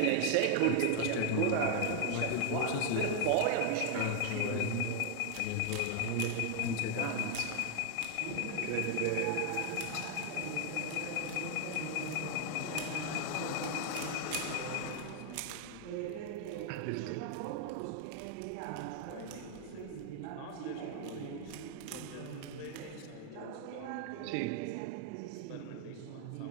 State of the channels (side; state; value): both; different; correlation 0.00